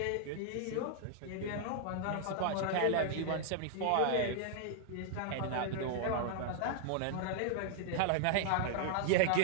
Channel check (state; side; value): different; both; correlation -0.01